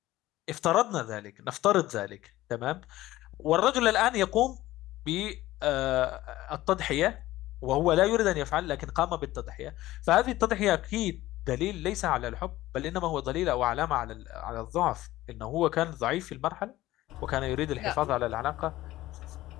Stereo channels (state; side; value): quieter; right; 16.3 dB